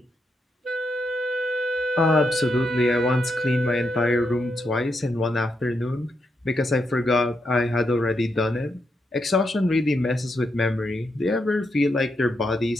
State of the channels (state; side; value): normal; both; correlation 0.82